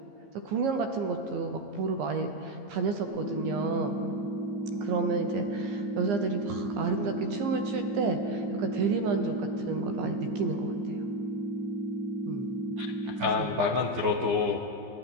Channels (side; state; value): left; late; 15 ms